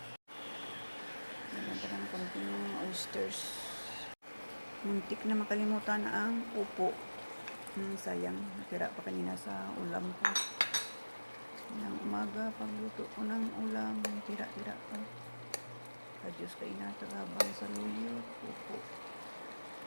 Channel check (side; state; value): both; inverted; correlation -1.00